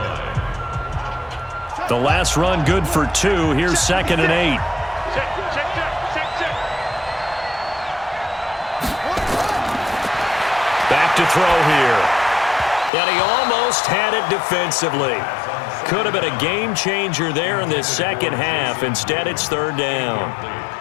The last run good for 2. Here's 2nd and 8. Back to throw here. And he almost had it defensively. Could have been a game changer there in this second half. Instead, it's 3rd down.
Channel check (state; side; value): drops out; right; at 12.9 s